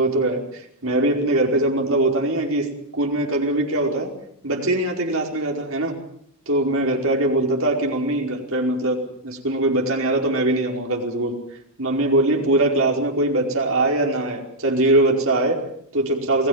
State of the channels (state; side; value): normal; both; correlation -0.05